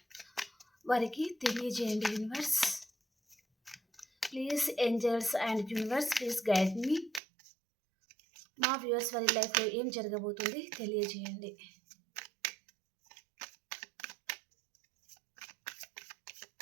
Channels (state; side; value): drops out; left; at 7.2 s